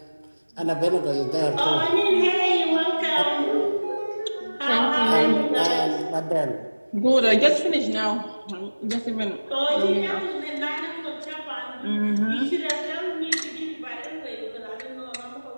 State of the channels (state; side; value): inverted; both; correlation -1.00